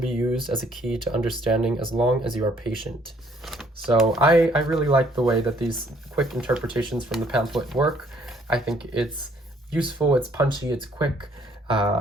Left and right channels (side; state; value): both; normal; correlation 0.64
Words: used as a key to understanding as long as you are patient. So I really like the way that these quick interpretations from the pamphlet work. I think it's useful, it's punchy, it's quick.